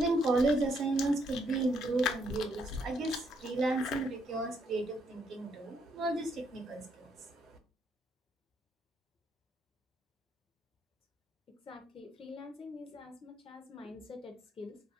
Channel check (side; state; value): both; normal; correlation 0.73